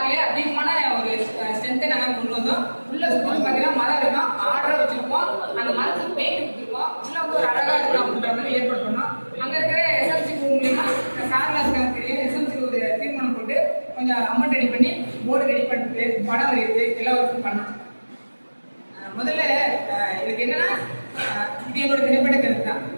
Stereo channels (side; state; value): both; inverted; correlation -1.00